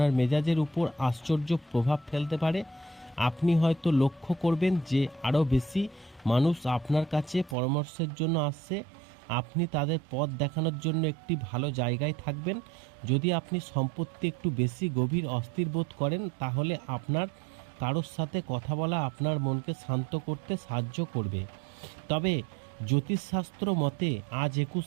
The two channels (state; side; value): drops out; left; at 7.6 s